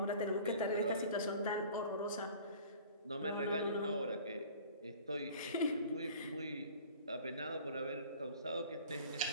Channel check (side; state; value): both; inverted; correlation -0.46